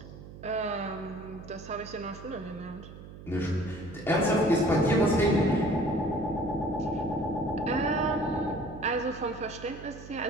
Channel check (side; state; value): right; noise; hum, 15 dB below the sound